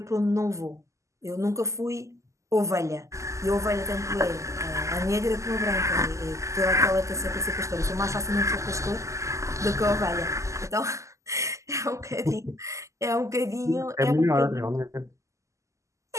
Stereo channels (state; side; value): late; left; 0.15 ms